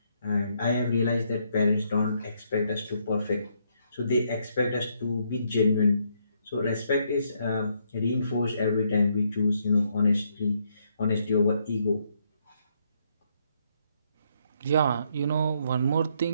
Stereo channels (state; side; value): inverted; both; correlation -0.74